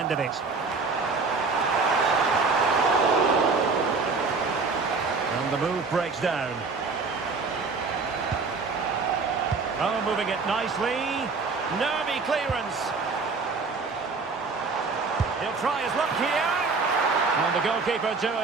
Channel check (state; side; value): quieter; left; 4.3 dB